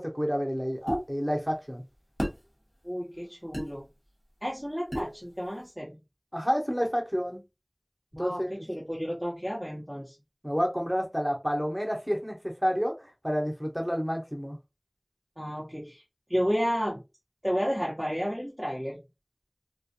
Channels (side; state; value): both; identical; correlation 1.00